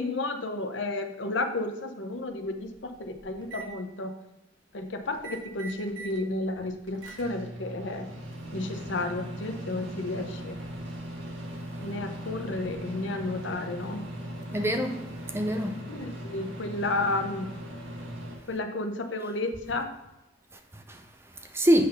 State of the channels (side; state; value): both; normal; correlation 0.44